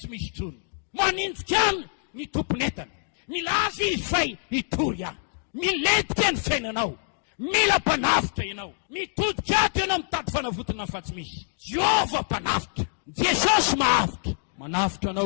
misy tsony manindrika any ny tomponentana milaza izy fay hitory ahy miletika ny fiainanao mila mpanavitra ianao mitodika ato ianao mitady fanavotana fa tsy misy Jehova mpanavitra Jesosy mahavitra manavitra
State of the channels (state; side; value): silent; right; digital silence